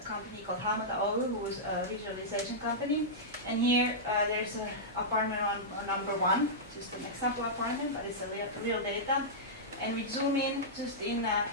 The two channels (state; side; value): normal; both; correlation -0.12